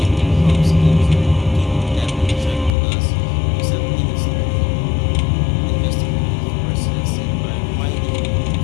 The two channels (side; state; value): right; drops out; at 2.7 s